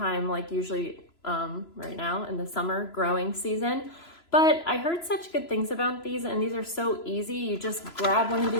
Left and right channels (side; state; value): right; late; 3.0 ms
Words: like usually right now in the summer growing season. But I heard such good things about these, and these are so easy. You just grab one of